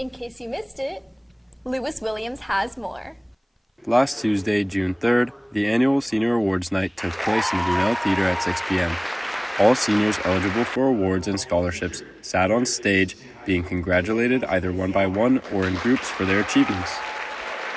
case you missed it, Lewis Williams has more. Last Tuesday, June 3rd, the annual Senior Awards Night took place in the Brunel Theater at 6 p.m. All seniors eligible for awards and scholarships sat on stage, being congratulated either one by one or in groups for their achievements.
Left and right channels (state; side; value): identical; both; correlation 1.00